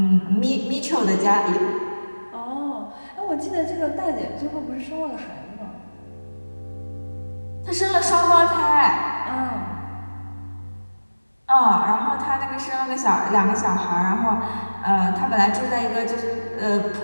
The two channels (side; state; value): both; inverted; correlation -1.00